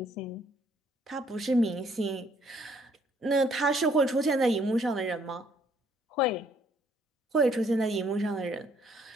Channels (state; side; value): normal; both; correlation 0.65